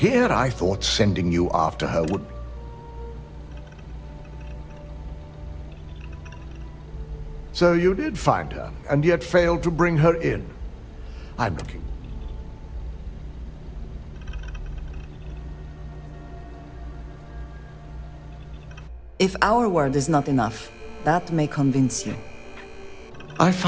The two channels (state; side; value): identical; both; correlation 1.00